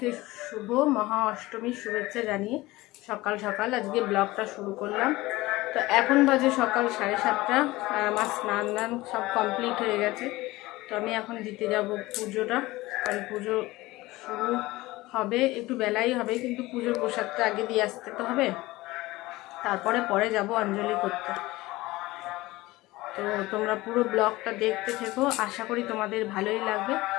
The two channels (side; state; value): right; quieter; 19.4 dB